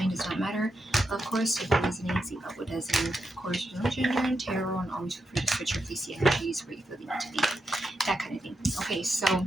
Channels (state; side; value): normal; both; correlation 0.85